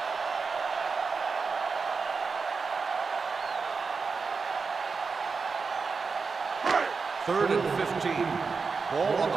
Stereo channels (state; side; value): quieter; left; 4.9 dB